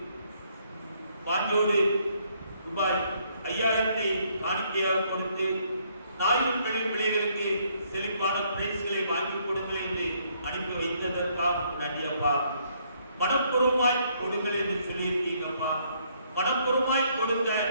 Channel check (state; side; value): inverted; both; correlation -0.69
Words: வாஞ்சியோடு ரூபாய் 5000 காணிக்கையாக கொடுத்து 1000 பிள்ளைகளுக்கு செழிப்பான பிரைஸ்களை வாங்கி கொடுங்கள் என்று அனுப்பி வைத்ததற்காக நன்றி அப்பா. மனப்பூர்வமாய் கொடுங்கள் என்று சொல்லியிருக்கீங்கப்பா. மனப்பூர்வமாய் கொடுத்த